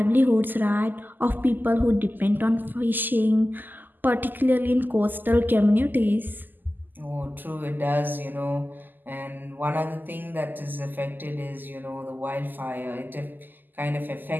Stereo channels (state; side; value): late; left; 0.088 ms